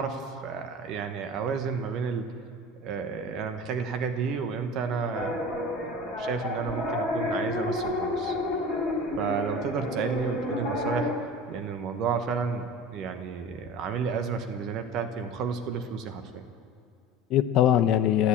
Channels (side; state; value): both; normal; correlation 0.35